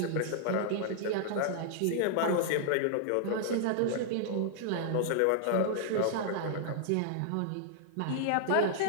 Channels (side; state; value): both; different; correlation -0.01